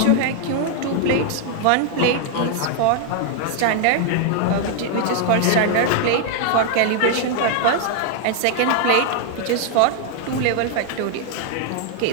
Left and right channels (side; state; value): both; different; correlation 0.00